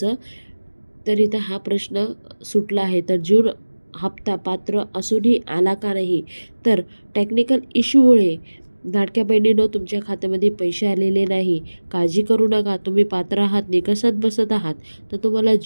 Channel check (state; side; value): inverted; both; correlation -1.00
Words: तर इथं हा प्रश्न सुटला आहे. तर जून हप्ता पात्र असूनही आला का नाही? तर टेक्निकल इश्यूमुळे लाडक्या बहिणीनं तुमच्या खात्यामध्ये पैसे आलेले नाही. काळजी करू नका. तुम्ही पात्र आहात, निकषात बसत आहात, तर तुम्हाला